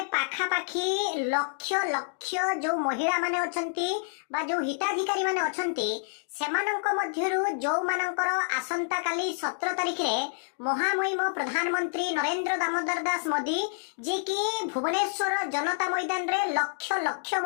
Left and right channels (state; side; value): silent; right; digital silence